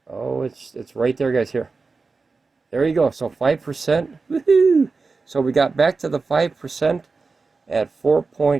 Oh, it's right there, guys. Here, there you go. So 5%. Woohoo! So we got back to the 5% at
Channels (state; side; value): quieter; left; 4.2 dB